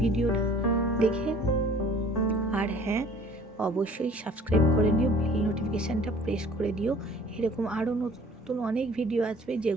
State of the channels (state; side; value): normal; both; correlation 0.50